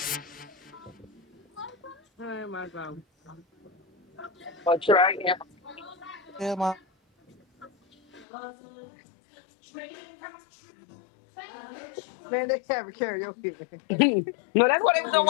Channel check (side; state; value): right; drops out; at 8.2 s